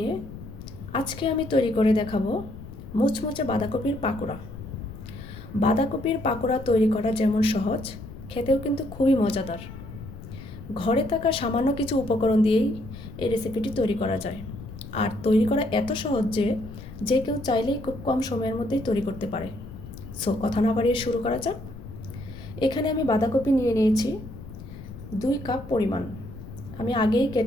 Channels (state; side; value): noise; left; rumble, 13 dB below the sound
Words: আজকে আমি তৈরি করে দেখাবো মুচমুচে বাঁধাকপির পাকোড়া। বাঁধাকপির পাকোড়া তৈরি করা যেমন সহজ, খেতেও কিন্তু খুবই মজাদার। ঘরে থাকা সামান্য কিছু উপকরণ দিয়েই এই রেসিপিটি তৈরি করা যায়। আর তৈরি করা এত সহজ যে কেউ চাইলেই খুব কম সময়ের মধ্যেই তৈরি করতে পারে। সো কথা না বাড়িয়ে শুরু করা যাক। এখানে আমি বাঁধাকপি নিয়ে নিয়েছি 2 কাপ পরিমাণ। আমি আগেই